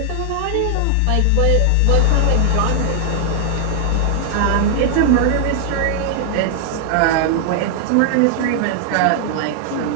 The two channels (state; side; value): different; both; correlation 0.00